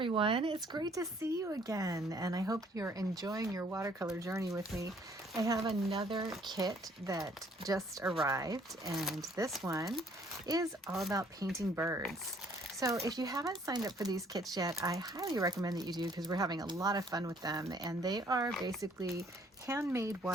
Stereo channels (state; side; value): normal; both; correlation 0.62